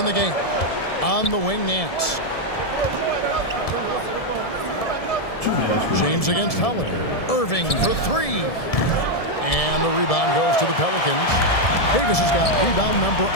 the game. On the wing, Nance. James against Holiday. Irving for 3. And the rebound goes to the Pelicans. Davis has got rebound number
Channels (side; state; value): right; late; 1.7 ms